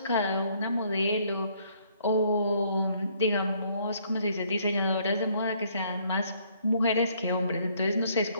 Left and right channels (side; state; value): both; inverted; correlation -0.66